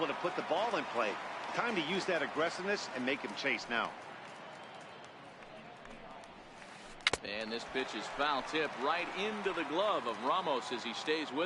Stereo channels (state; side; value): identical; both; correlation 1.00